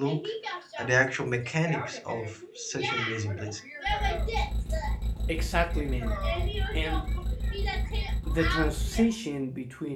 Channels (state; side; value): identical; both; correlation 1.00